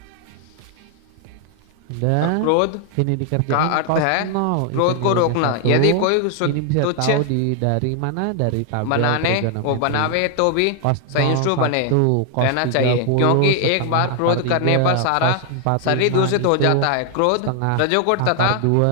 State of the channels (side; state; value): both; different; correlation 0.00